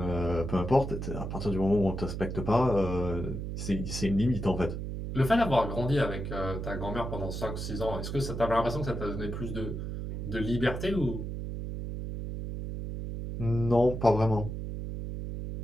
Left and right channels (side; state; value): right; noise; hum, 5 dB below the sound